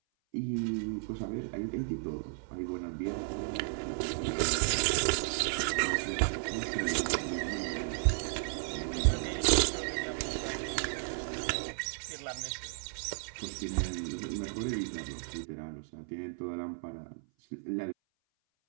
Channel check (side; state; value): left; silent; 55 dB below the other